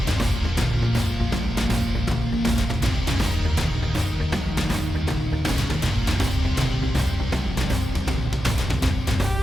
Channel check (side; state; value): both; normal; correlation 0.90